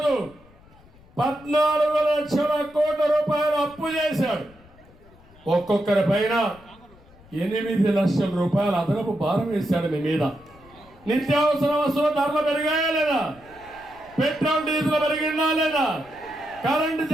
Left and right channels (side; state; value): left; noise; rumble, 25 dB below the sound